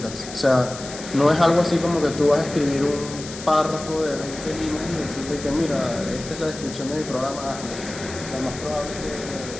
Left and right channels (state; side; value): noise; left; hiss, 12 dB below the sound